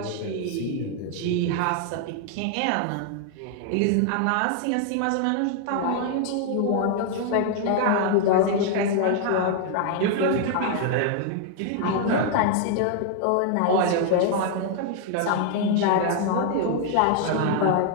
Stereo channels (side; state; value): both; different; correlation 0.00